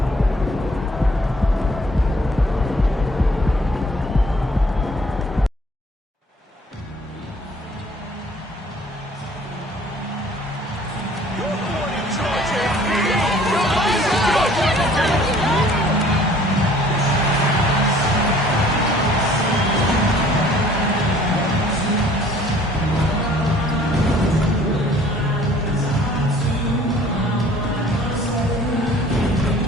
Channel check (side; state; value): both; normal; correlation 0.55